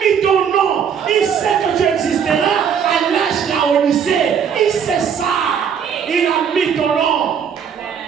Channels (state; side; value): quieter; left; 7.6 dB